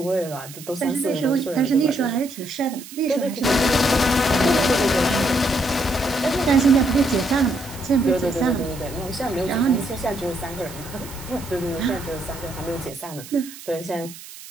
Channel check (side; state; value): right; noise; hiss, 16 dB below the sound